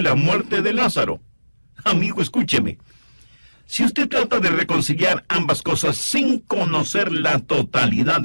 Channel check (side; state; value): both; inverted; correlation -1.00